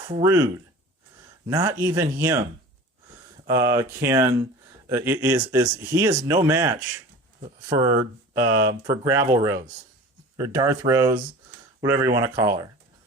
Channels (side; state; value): both; normal; correlation 0.39